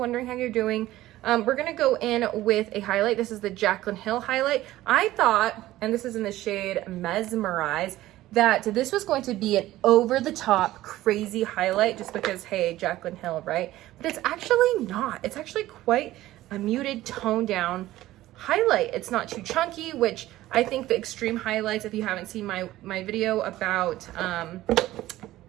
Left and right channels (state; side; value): quieter; left; 15.6 dB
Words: how you're doing. We're gonna go in with a highlight. This is the Jaclyn Hill highlight. I thought, and this is in the shade Mesmerize, that this was going to be an over-the-top crazy highlight, just because, hey, Jaclyn Hill, right? But it's actually not. It's actually quite a muted, toned down highlight. It's not too chunky, which I think the extreme highlights, if you haven't seen my video about